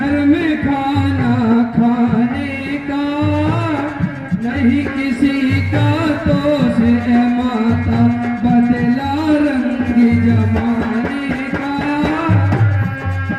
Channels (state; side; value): identical; both; correlation 1.00